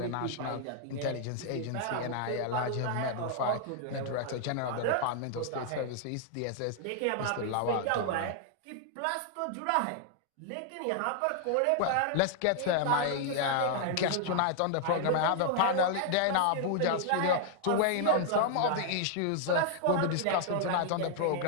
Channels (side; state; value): both; different; correlation 0.00